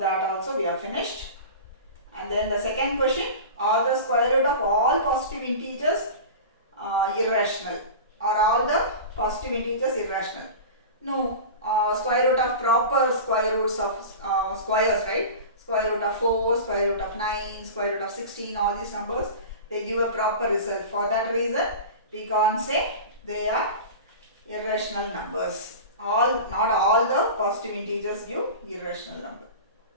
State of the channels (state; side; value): inverted; both; correlation -0.31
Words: also we have finished. And then the second question, are the square root of all positive integers irrational? Are all the positive integers irrational? No. Square root of proper square roots of squares, right? Square root of 4, square root of 9, square root of 16, all these numbers, they give a proper result. For that reason, we can't say they are irrational numbers. Not all the positive integers give irrational number.